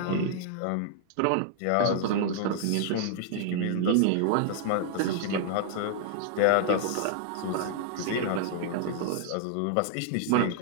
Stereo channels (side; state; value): both; different; correlation -0.01